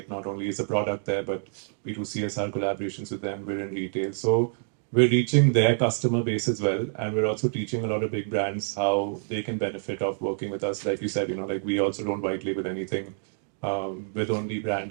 not only is the product there, but we do CSR collaborations with them. We're in retail. So we're reaching their customer base as well. And we're also teaching a lot of big brands how they can benefit of working with us. Like you said, like, we also don't white label anything. With only brand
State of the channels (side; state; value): left; silent; digital silence